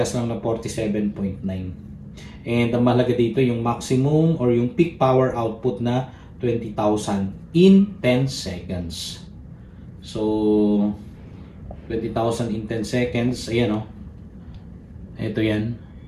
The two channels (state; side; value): identical; both; correlation 1.00